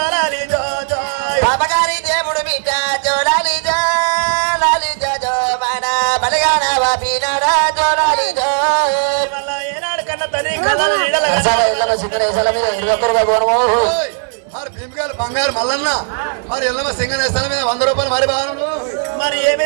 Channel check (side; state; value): left; silent; 69 dB below the other